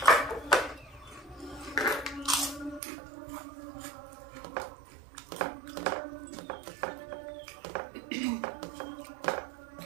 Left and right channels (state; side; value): drops out; left; at 2.8 s